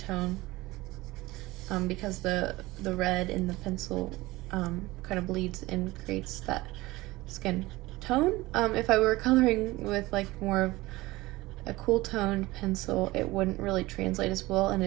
because the red in the pencil kind of bleeds and creates that skin tone. If I were coloring with like more of a cool toned pencil, it wouldn't really translate as well and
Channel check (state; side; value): quieter; left; 19.8 dB